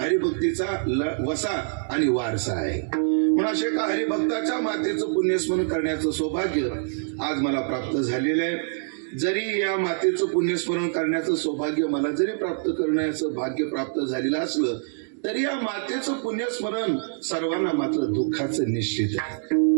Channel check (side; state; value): left; silent; digital silence